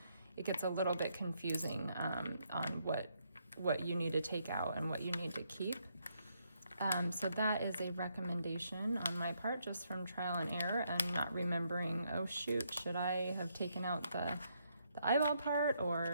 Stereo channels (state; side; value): inverted; both; correlation -0.75